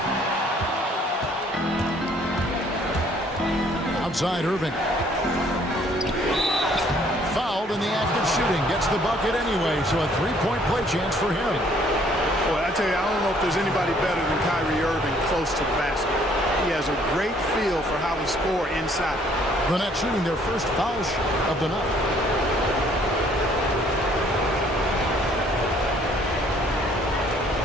Outside Irving. Fouled in the act of shooting. Gets the bucket anyway, so a three-point play chance for him. Boy, I tell you, I don't know if there's anybody better than Kyrie Irving close to the basket. He has a great feel for how to score inside. The Nets shooting their first foul shot of the night.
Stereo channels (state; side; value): normal; both; correlation 0.62